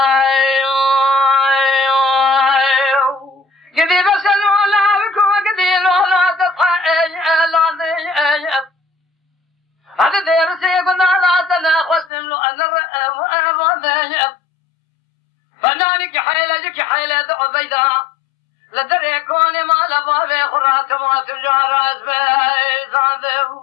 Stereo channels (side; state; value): right; drops out; at 12.1 s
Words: قدي بسلو لا بكو قدلو لا تطحى لا هذا درسي قلنا لا تناقصتم له أنا وأبغى فنانك حيلك حيلة عبيدة لدري كوني ما لبابي خرات ما تجار أزبي